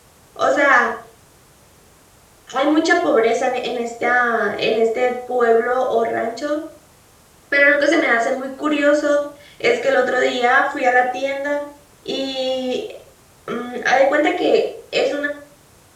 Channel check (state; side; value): identical; both; correlation 1.00